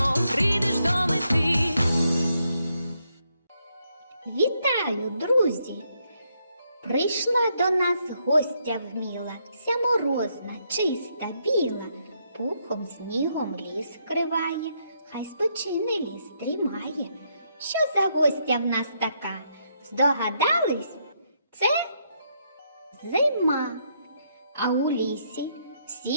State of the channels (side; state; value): both; inverted; correlation -0.76